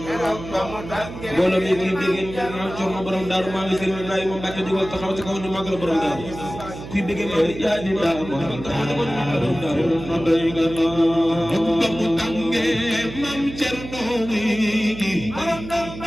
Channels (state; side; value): noise; right; hum, 12 dB below the sound